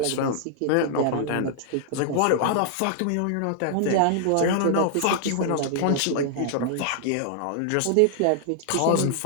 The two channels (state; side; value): different; both; correlation 0.00